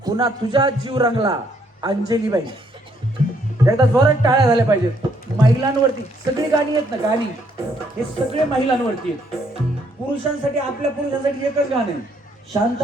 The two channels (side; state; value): both; normal; correlation 0.70